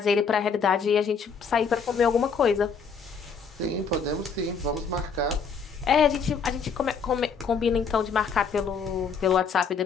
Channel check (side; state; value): right; quieter; 5.6 dB